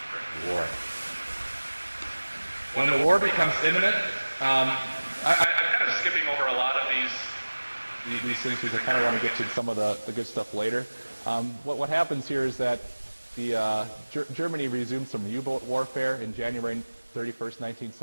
during the war. When the war becomes imminent, I'm kind of skipping over a lot of these things because I kind of want to get to some of the good stuff later. What happens here is that Germany resumed some U-boat warfare in January 31st,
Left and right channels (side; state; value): both; inverted; correlation -1.00